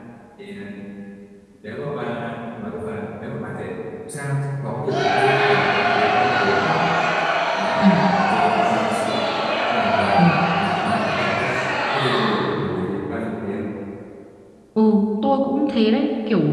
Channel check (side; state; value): both; identical; correlation 1.00